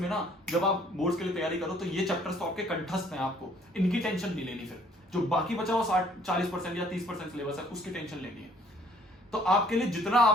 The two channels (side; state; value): both; normal; correlation 0.60